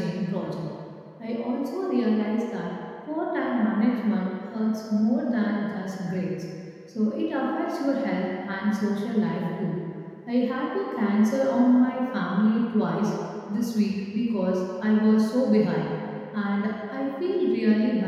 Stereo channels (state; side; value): identical; both; correlation 1.00